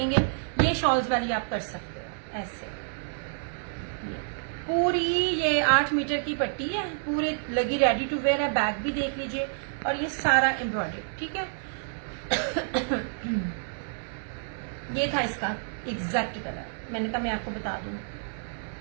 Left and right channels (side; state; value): left; silent; digital silence